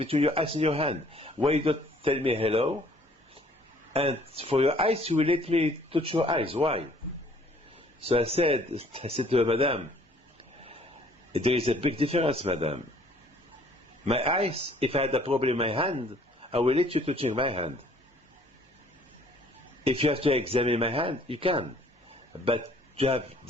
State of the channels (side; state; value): both; normal; correlation 0.58